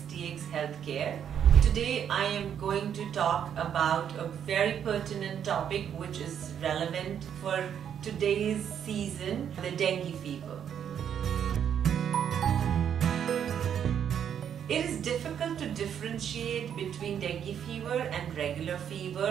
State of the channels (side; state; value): left; quieter; 8.7 dB